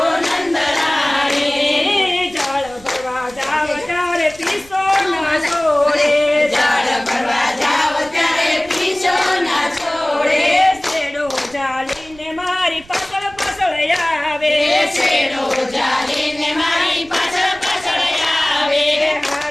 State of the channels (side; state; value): right; noise; rumble, 23 dB below the sound